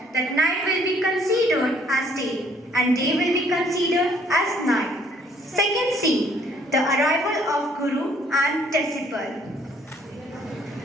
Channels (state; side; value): normal; both; correlation 0.62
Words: that night will be considered as day and day will be considered as night. Second scene, the arrival of Guru and disciple.